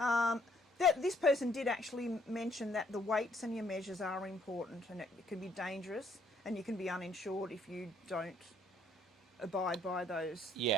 This person did actually mention that the weights and your measures are important, and it can be dangerous, and you can be uninsured if you don't abide by those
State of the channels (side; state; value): both; normal; correlation 0.66